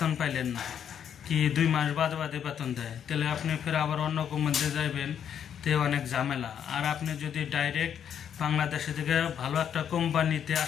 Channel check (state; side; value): quieter; right; 8.7 dB